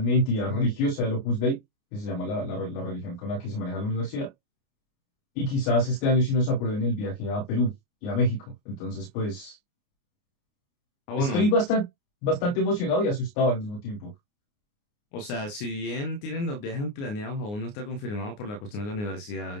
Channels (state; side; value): late; right; 29 ms